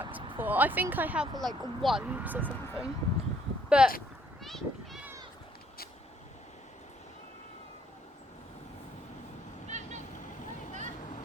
before. I think I have like once or something. But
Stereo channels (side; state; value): both; normal; correlation 0.66